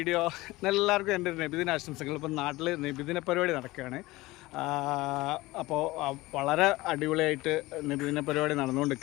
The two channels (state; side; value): quieter; right; 19.6 dB